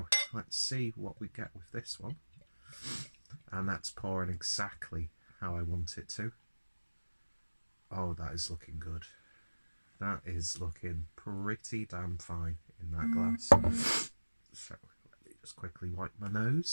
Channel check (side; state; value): both; inverted; correlation -1.00